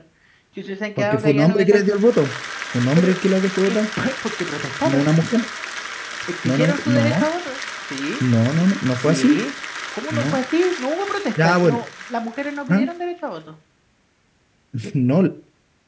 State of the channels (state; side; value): identical; both; correlation 1.00